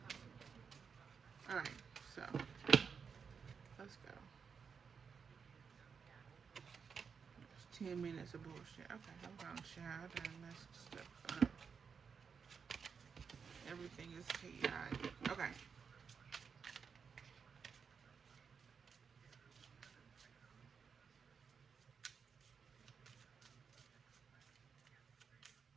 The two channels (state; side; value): quieter; left; 6.1 dB